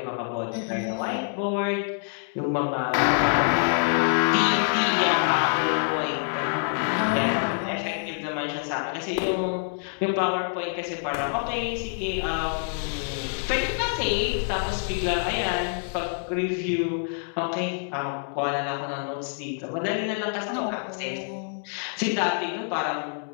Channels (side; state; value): right; silent; 60 dB below the other